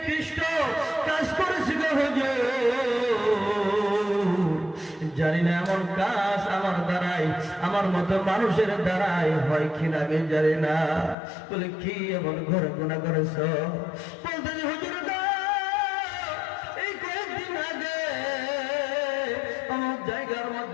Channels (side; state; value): right; drops out; at 11.2 s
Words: কাজ করেছি গো হুজুর, জানি না এমন কাজ আমার দ্বারাই আমার মতো মানুষের দ্বারাই হয় কিনা আমি জানি না। বলে কি এমন ঘরে গুনাহ করেছ? বলতে হুজুর গো এই কয়েকদিন আগে আমার জায়গার